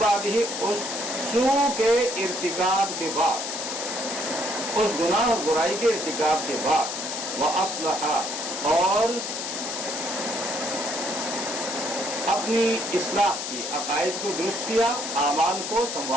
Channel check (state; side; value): noise; left; hiss, 5 dB below the sound